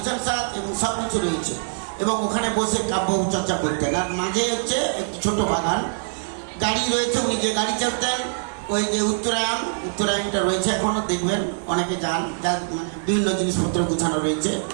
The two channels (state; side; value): silent; left; 63 dB below the other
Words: সাত এবং সব কিছু রয়েছে এবং ওখানে বসে কাব্য চর্চা করতেন। আর মাঝে হচ্ছে একটি ছোট বাগান, গাড়ি রয়েছে। উনি যে গাড়ি চাপতেন, ওই যে উত্তরায়ণটা রয়েছে, এখনো দেখবেন অনেকে যান, যার মানে বিভিন্ন জিনিসপত্র গুছানো রয়েছে।